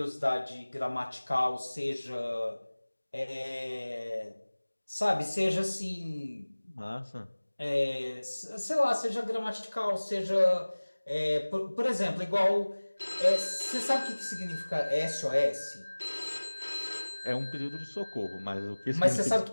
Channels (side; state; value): both; inverted; correlation -1.00